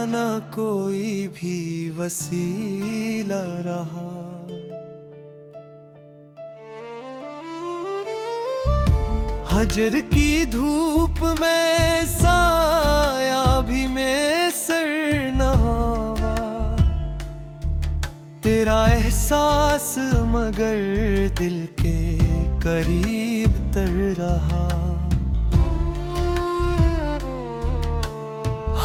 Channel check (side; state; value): both; identical; correlation 1.00